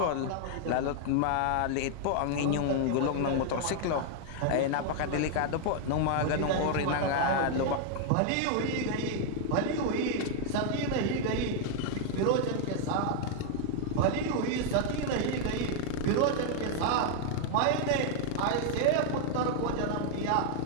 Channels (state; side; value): different; both; correlation 0.00